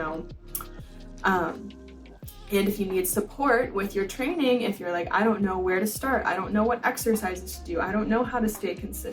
And if you need support with your training, if you're like, I don't know where to start, I don't know what exercises to do, I don't know how to stay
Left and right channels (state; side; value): identical; both; correlation 1.00